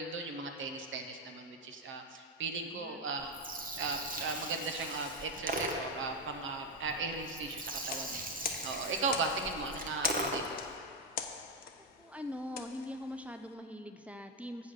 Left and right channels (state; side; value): normal; both; correlation 0.04